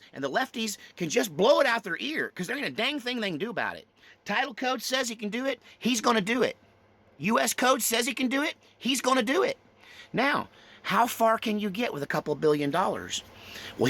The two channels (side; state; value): both; identical; correlation 1.00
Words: and the lefties can just blow it out their ear, because there ain't a dang thing they can do about it. Title code says he can do it, he's going to do it. U.S. code says he can do it, he's going to do it. Now, how far can you get with a couple $billion? Well,